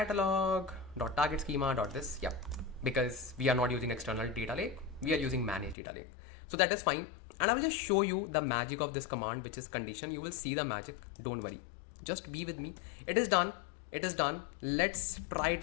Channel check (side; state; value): right; drops out; at 5.8 s